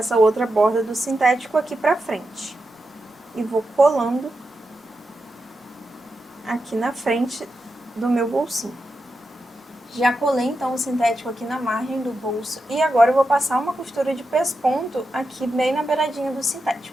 outra borda do sintético aqui pra frente. E vou colando aqui na frente do meu bolsinho. Já colei então o sintético aqui na margem do bolso e agora eu vou passar uma costura de pesponto aqui bem na beiradinha do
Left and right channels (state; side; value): normal; both; correlation 0.88